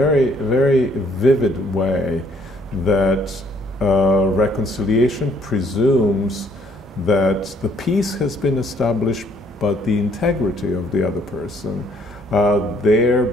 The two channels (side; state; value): both; normal; correlation 0.64